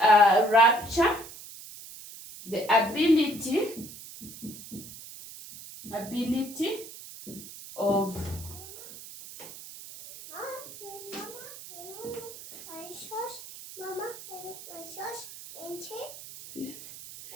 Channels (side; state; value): right; noise; hiss, 14 dB below the sound